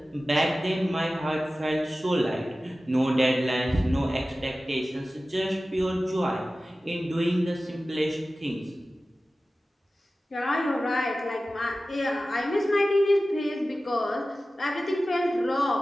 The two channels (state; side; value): normal; both; correlation 0.96